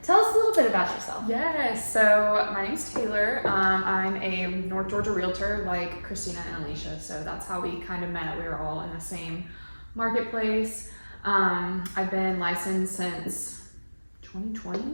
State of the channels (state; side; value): inverted; both; correlation -1.00